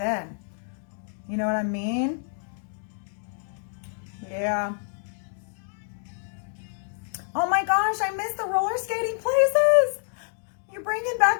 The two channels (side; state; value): right; silent; digital silence